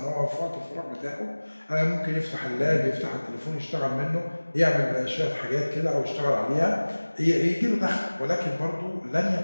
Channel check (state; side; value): inverted; both; correlation -1.00